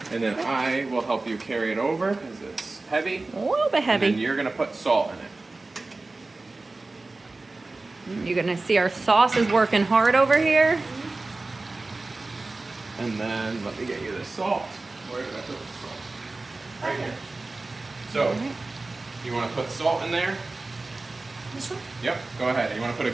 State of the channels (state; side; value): quieter; left; 3.3 dB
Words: And then I will help you carry it over because it's heavy. A little bit And then heavy. you're gonna put salt in it. You're gonna see our sauce is working hard over here. And then let me get you the salt. Where did I put the salt? Right here. So, you want to put salt in there? This one? Yep. Go ahead. You want to put a